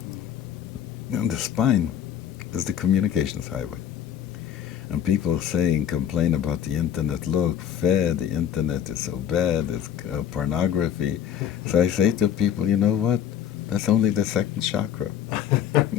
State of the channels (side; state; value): right; quieter; 9.5 dB